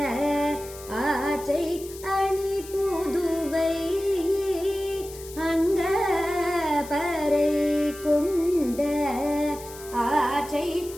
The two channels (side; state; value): left; noise; hiss, 16 dB below the sound